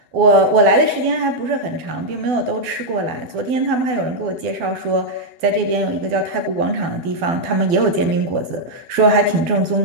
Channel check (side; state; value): left; late; 12 ms